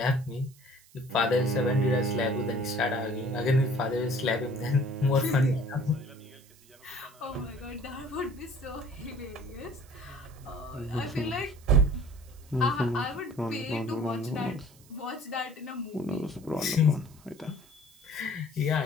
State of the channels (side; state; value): right; noise; hiss, 26 dB below the sound